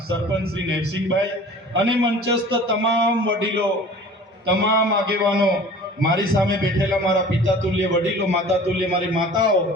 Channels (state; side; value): normal; both; correlation 0.45